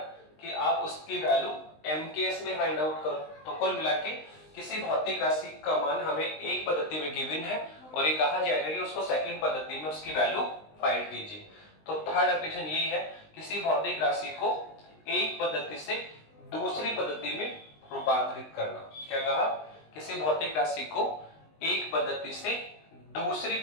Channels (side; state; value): right; late; 19 ms